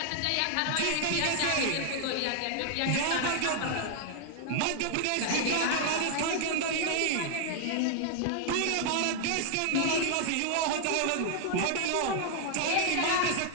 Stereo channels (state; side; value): different; both; correlation 0.00